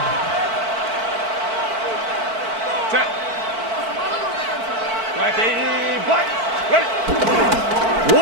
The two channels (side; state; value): left; late; 4.5 ms